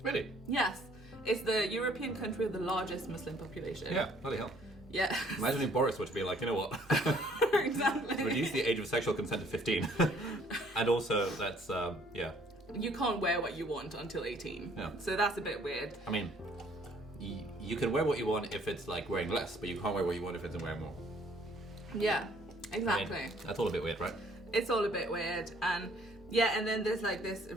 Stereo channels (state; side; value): normal; both; correlation 0.61